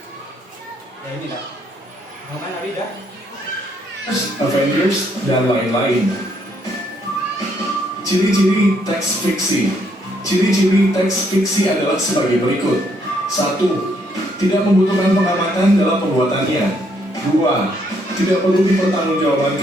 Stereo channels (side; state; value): both; normal; correlation 0.71